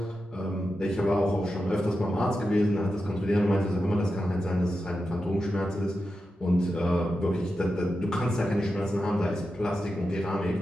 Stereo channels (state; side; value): normal; both; correlation 0.90